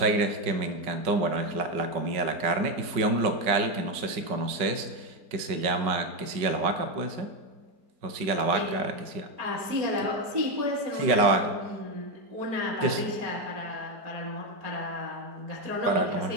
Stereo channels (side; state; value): left; late; 5.3 ms